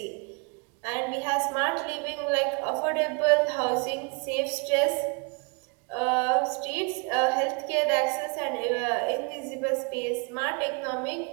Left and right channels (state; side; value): quieter; left; 34.7 dB